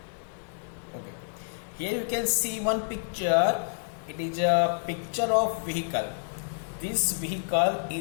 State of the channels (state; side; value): silent; right; digital silence